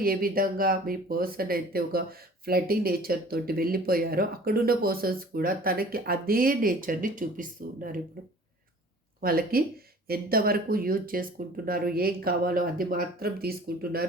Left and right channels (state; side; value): normal; both; correlation 0.48